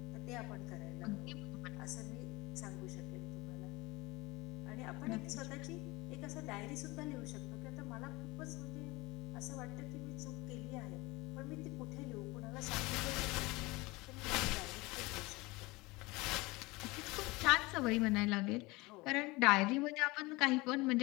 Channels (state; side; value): quieter; right; 23.0 dB